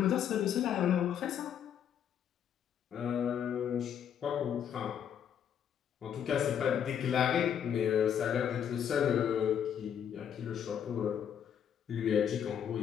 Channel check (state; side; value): quieter; right; 8.8 dB